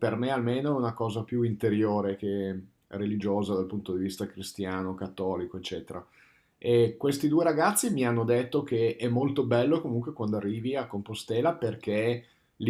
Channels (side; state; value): both; identical; correlation 1.00